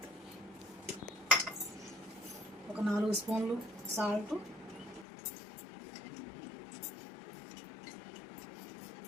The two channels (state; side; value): drops out; right; at 5.1 s